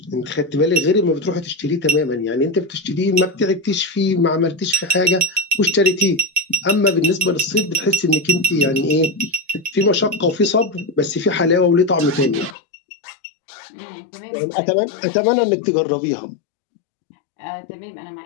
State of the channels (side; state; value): right; drops out; at 12.6 s